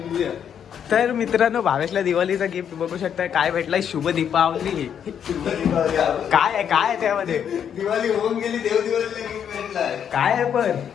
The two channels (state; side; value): quieter; right; 8.5 dB